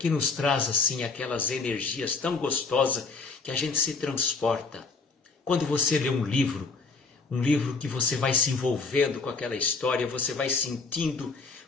nos traz assim aquelas energias tão gostosas que a gente se transporta. Quando você lê um livro que você vai se envolvendo com aquela história, você vai sentindo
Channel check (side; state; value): right; quieter; 4.3 dB